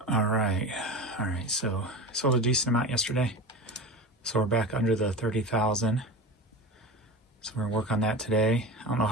All right. So sold a decent amount yesterday. So we're back under the 30,000. So we're gonna work on that today. I don't know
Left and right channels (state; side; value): normal; both; correlation 0.29